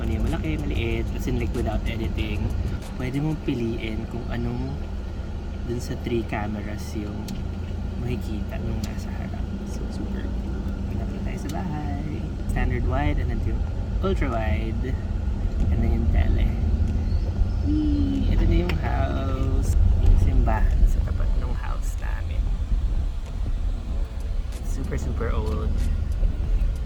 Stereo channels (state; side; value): identical; both; correlation 1.00